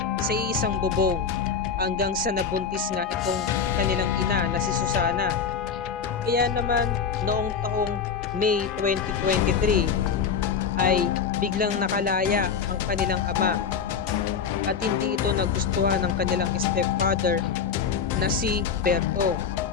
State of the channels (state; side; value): quieter; right; 6.4 dB